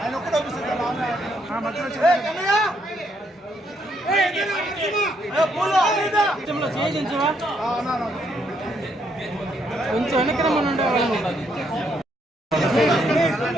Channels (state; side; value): normal; both; correlation 0.73